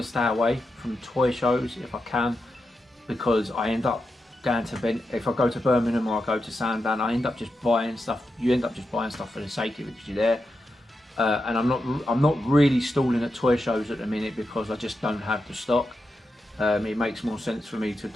stay away from toy shows if I can, because I end up going to, if I go to Birmingham or I go to Sandown, I end up just buying stuff. You end up just buying stuff for the sake of it because you're there. And I'm not really stalling at toy shows at the minute because I just don't have the stock. It makes more sense for me to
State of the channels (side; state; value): both; normal; correlation 0.88